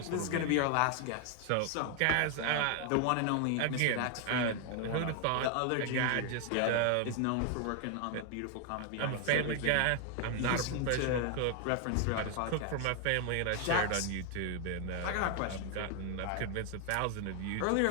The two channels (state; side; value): different; both; correlation 0.00